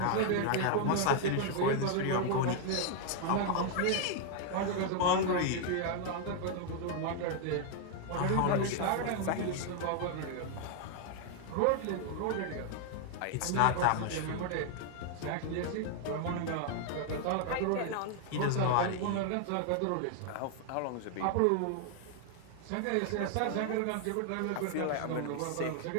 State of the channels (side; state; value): both; different; correlation 0.00